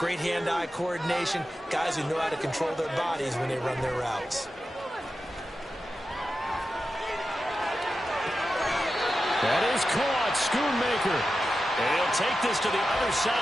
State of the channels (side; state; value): both; normal; correlation 0.91